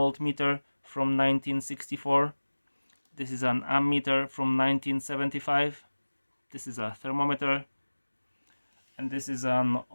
from 1964. This is an ammeter from 1975. This is a thermometer. And this is an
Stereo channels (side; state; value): both; inverted; correlation -1.00